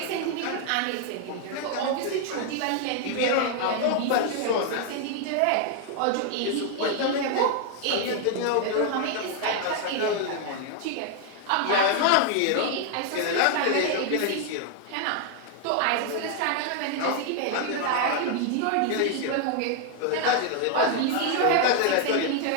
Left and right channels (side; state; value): both; different; correlation 0.00